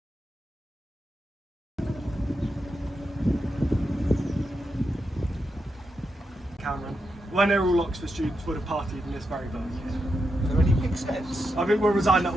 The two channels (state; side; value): normal; both; correlation 0.86